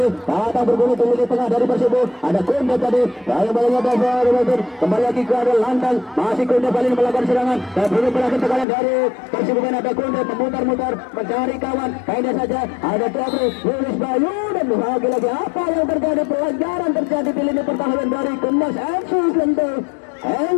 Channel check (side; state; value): right; drops out; at 8.7 s